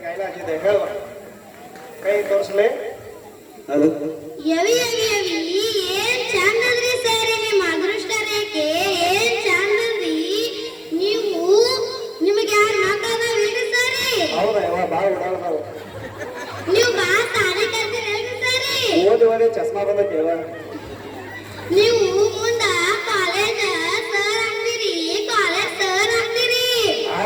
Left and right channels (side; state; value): both; identical; correlation 1.00